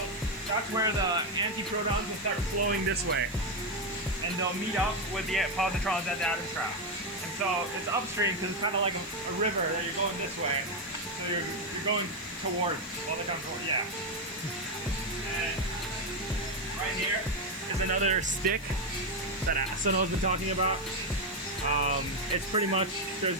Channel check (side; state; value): left; noise; hiss, 20 dB below the sound